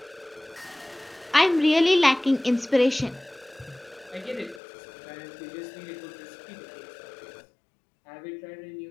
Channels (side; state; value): right; drops out; at 4.6 s